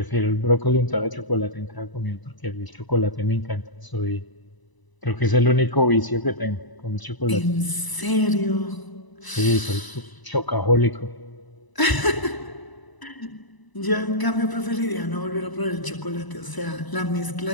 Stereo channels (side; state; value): right; late; 1.0 ms